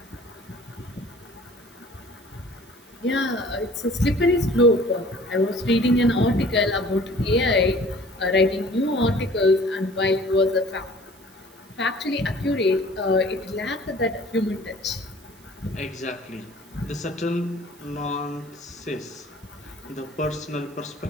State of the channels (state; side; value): noise; right; hiss, 28 dB below the sound